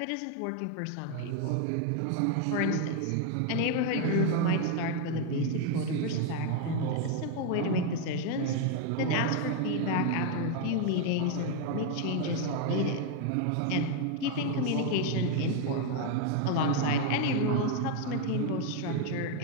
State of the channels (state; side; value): different; both; correlation 0.01